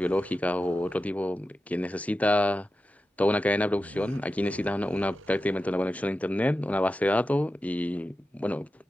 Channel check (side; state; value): both; normal; correlation 0.92